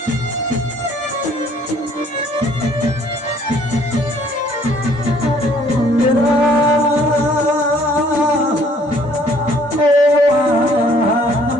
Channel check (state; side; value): normal; both; correlation 0.60